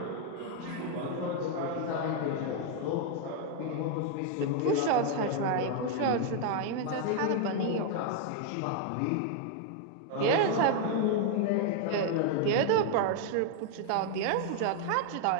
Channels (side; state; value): both; different; correlation 0.01